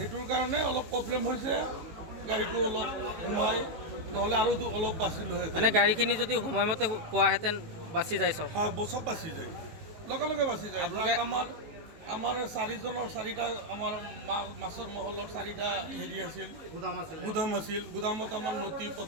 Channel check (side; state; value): left; late; 18 ms